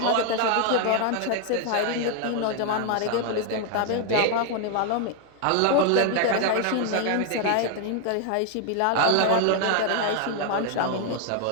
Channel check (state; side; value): different; both; correlation 0.01